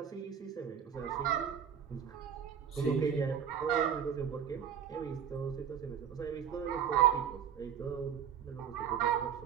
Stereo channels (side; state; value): left; quieter; 8.3 dB